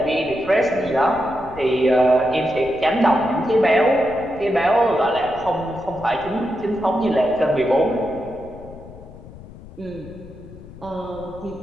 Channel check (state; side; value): noise; left; rumble, 18 dB below the sound